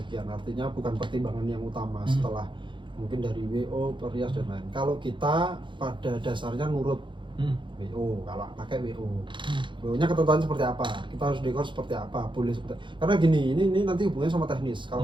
artinya bukan pertimbangan yang utama setelah mungkin dari WO, perias dan lain. Kalau kita pada dasarnya nurut WO, kalau pakai WO, WO-nya ketentuan seperti apa, kita harus dekor seperti apa, boleh seperti, karena gini, ini nanti hubungannya sama teknis.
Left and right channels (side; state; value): left; late; 0.23 ms